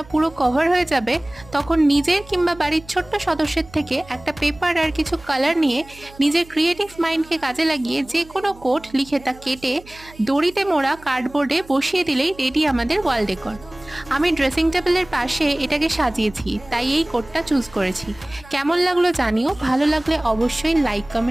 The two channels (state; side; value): noise; right; hum, 22 dB below the sound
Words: পুরো কভার হয়ে যাবে, তখন নিজের কিংবা বাড়ির ছোট্ট সদস্যের থেকে একটা পেপার আর কিছু কালার নিয়ে নিজের ক্রিয়েটিভ মাইন্ডকে কাজে লাগিয়ে যে কোনো কোড লিখে তা কেটে দড়িতে মোড়া কার্ডবোর্ডে বসিয়ে দিলেই রেডি আমাদের ওয়াল ডেকর। আমি ড্রেসিং টেবিলের পাশে এটাকে সাজিয়েছি, তাই এই কোডটা চুজ করেছি। কেমন লাগলো জানিও, ভালো লাগলে অবশ্যই লাইক